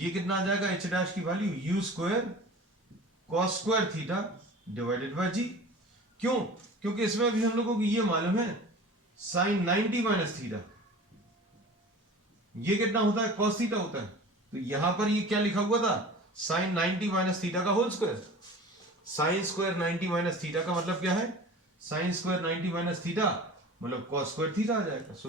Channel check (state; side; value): normal; both; correlation 0.39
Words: कितना आ जाएगा, एच डैश की value u square cos square theta divided by g. क्यों? क्योंकि इसमें भी हम लोगों को ये मालूम है साइन 90 माइनस थीटा ये कितना होता है, कॉस थीटा होता है। तो यहां पर ये क्या लिखा हुआ था, साइन 90 माइनस थीटा का whole square. Sine square 90 minus theta का मतलब क्या है, साइन स्क्वायर 90 माइनस थीटा मतलब कॉस स्क्वायर थीटा आ जाएगा। So